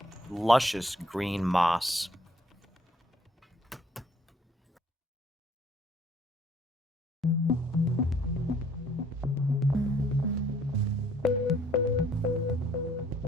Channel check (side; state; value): both; normal; correlation 0.63